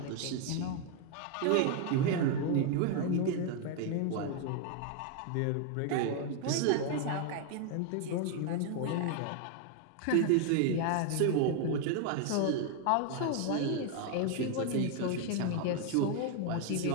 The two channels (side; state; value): both; different; correlation 0.00